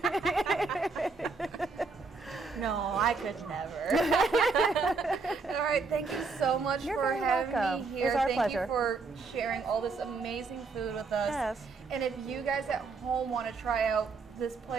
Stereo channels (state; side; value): quieter; left; 4.4 dB